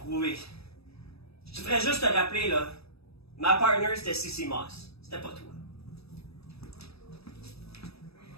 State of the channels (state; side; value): late; right; 0.78 ms